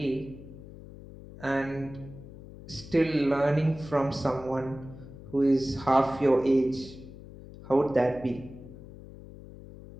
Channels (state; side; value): noise; left; hum, 16 dB below the sound